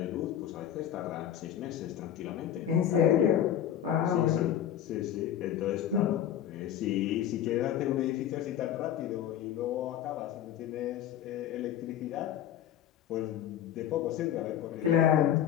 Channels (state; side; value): quieter; right; 10.5 dB